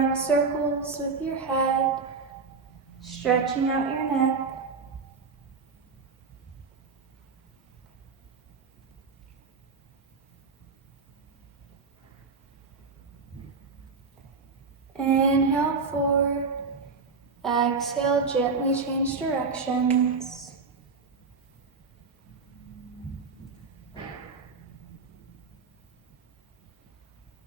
circles with your head, stretching out your neck. Inhale forward, exhale, gently change directions.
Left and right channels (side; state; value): left; quieter; 4.7 dB